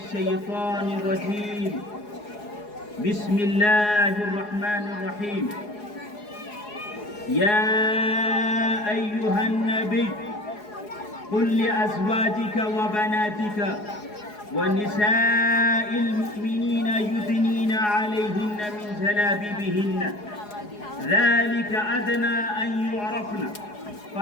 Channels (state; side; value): late; right; 4.8 ms